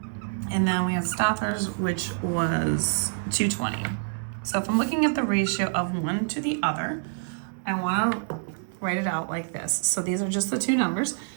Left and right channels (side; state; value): left; silent; 58 dB below the other